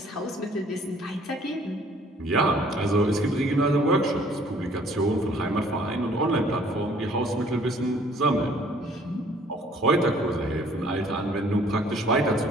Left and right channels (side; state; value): both; normal; correlation 0.58